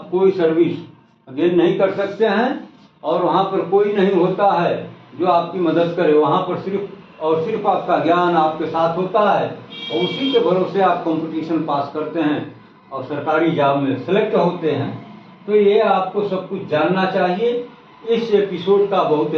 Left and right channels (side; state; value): both; identical; correlation 1.00